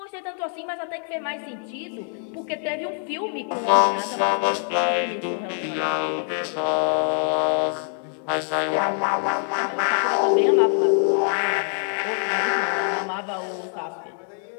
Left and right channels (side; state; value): right; silent; 55 dB below the other